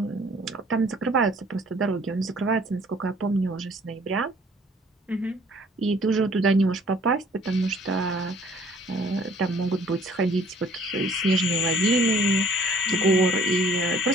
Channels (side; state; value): both; normal; correlation 0.57